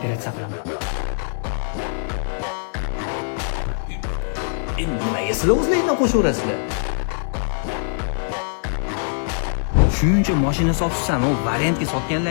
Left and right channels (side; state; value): right; silent; 64 dB below the other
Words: qilaman. Endi nimaga sizlar o'zlaringdan qo'shaverasizlar? Shuncha mashina sotsan, u variantga